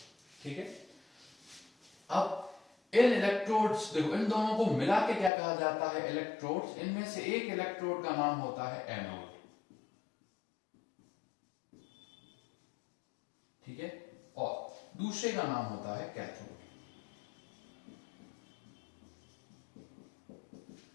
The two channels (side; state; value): right; drops out; at 5.3 s